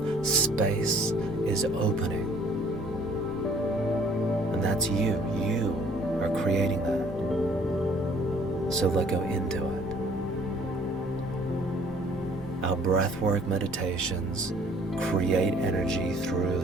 space is opening. And that's you. You are creating that. So let go into it. Our breathwork meditations create energy through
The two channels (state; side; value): normal; both; correlation 0.57